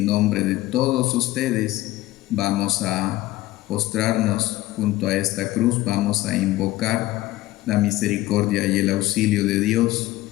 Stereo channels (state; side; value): quieter; right; 17.2 dB